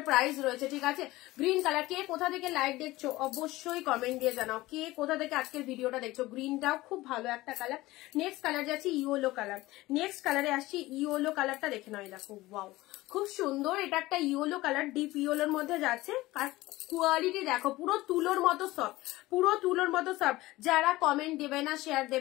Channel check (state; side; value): quieter; right; 18.6 dB